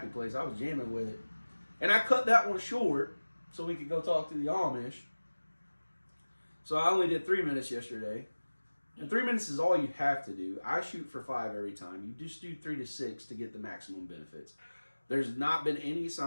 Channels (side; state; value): both; inverted; correlation -1.00